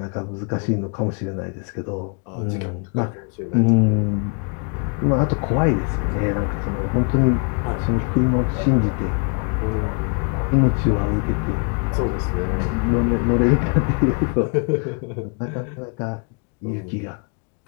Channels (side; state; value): right; quieter; 37.5 dB